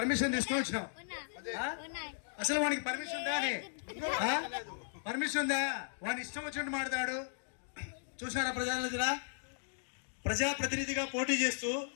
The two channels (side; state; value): right; silent; digital silence